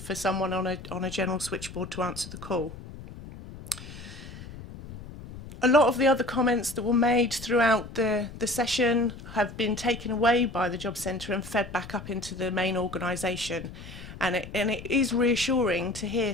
someone on a general switchboard to answer the call. A lot of the other comments that were made throughout the session have been taken away by the Job Centre and fed back up into the main organisation. And it is reassuring to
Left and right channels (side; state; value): left; noise; rumble, 14 dB below the sound